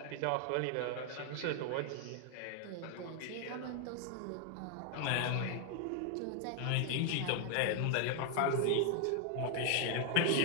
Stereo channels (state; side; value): different; both; correlation 0.00